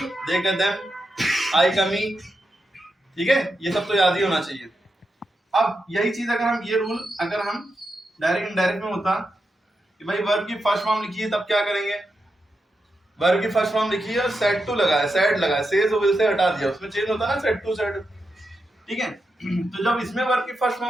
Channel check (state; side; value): normal; both; correlation 0.87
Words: का देम, आई का मी। ठीक है, ये सब तो याद ही होना चाहिए। अब यही चीज अगर हम, ये रूल अगर हम डायरेक्ट इनडायरेक्ट में होता कि भाई वर्ब की फर्स्ट फॉर्म लिखी है तब क्या करेंगे, वर्ब की फर्स्ट फॉर्म लिखी है और सेड टू लगाया, सेड लगाया, सेज और विल से हटा दिया, उसमें चेंज होता है ना, सेड टू सेड। ठीक है, तो जब इसमें वर्ब की फर्स्ट